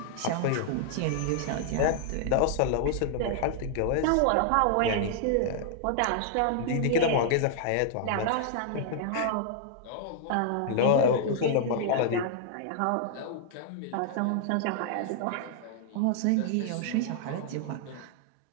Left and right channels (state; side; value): different; both; correlation -0.01